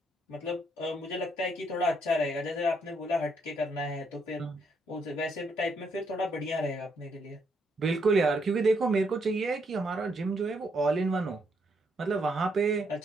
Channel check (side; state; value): both; normal; correlation 0.74